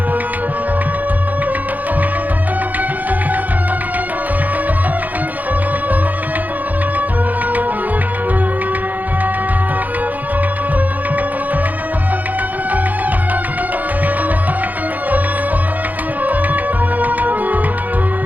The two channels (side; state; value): left; late; 0.081 ms